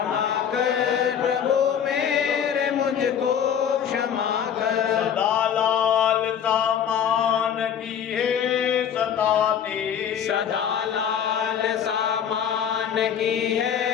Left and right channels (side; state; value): right; quieter; 8.5 dB